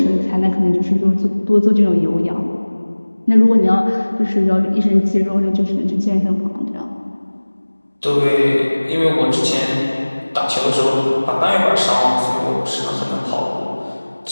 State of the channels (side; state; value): both; inverted; correlation -1.00